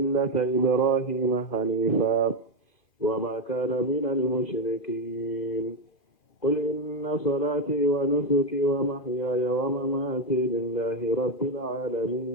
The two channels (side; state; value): right; late; 2.5 ms